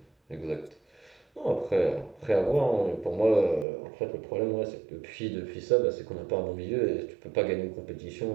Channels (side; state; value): left; drops out; at 3.7 s